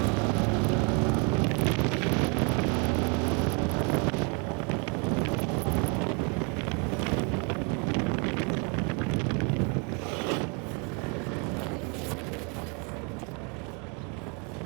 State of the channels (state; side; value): quieter; left; 33.9 dB